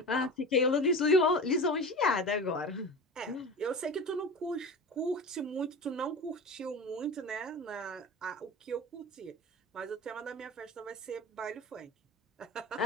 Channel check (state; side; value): normal; both; correlation 0.31